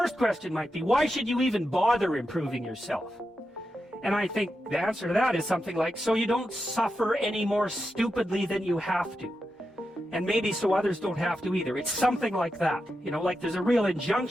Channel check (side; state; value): both; normal; correlation 0.88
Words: question might be, why should you even bother improving yourself? And I think the answer to that is something like, so you don't suffer any more stupidly than you have to. And maybe so others don't have to either. It's something like that. You know, like there's a real